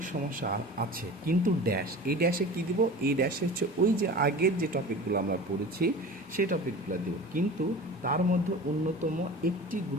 সমস্যা আছে, কিন্তু ড্যাশ, এই ড্যাশে কী দিব? এই ড্যাশে হচ্ছে ওই যে আগের যে টপিকগুলো আমরা পড়েছি সেই টপিকগুলো দেব, কিন্তু তার মধ্যে অন্যতম একটি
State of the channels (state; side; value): normal; both; correlation 0.37